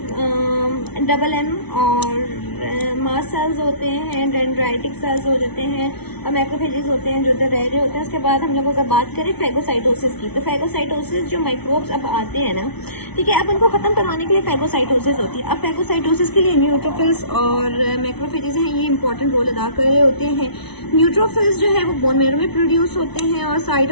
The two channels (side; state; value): right; late; 0.99 ms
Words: डबल एम, और मास सेल्स होते हैं, डेंड्राइटिक सेल्स हो जाते हैं, और मैक्रोफेजेस होते हैं जो उधर रह रहे होते हैं। उसके बाद हम लोग अगर बात करें फैगोसाइटोसिस की, तो फैगोसाइटोसिस जो माइक्रोब्स अब आते हैं ना, ठीक है, अब उनको खत्म करवाने के लिए फैगोसाइटोसिस होती है। अब फैगोसाइटोसिस के लिए न्यूट्रोफिल्स और मैक्रोफेजेस हैं, ये इंपॉर्टेंट रोल अदा कर रहे होते हैं। न्यूट्रोफिल्स जो है वो बोन मैरो में प्रोड्यूस होते हैं और साइड